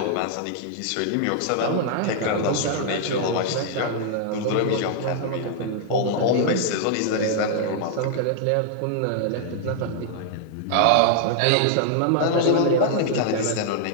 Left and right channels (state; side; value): different; both; correlation -0.01